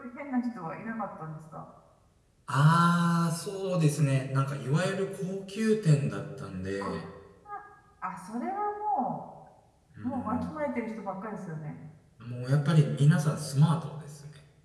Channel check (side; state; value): both; identical; correlation 1.00